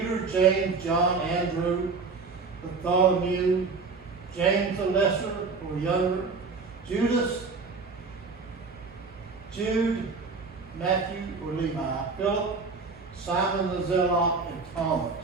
James, John, Andrew, Bartholomew, James the Lesser or Younger, Judas, Jude, Matthew or Levi, Philip, Simon the Zealot, and Thomas.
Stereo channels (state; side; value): quieter; left; 4.5 dB